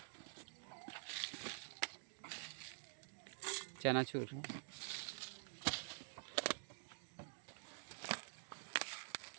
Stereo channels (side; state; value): left; silent; digital silence